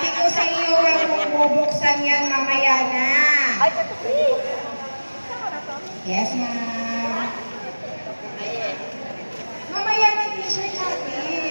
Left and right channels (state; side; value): inverted; both; correlation -1.00